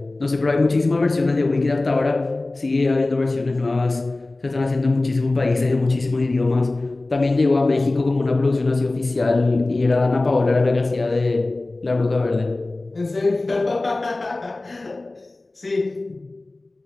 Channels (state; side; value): quieter; right; 3.0 dB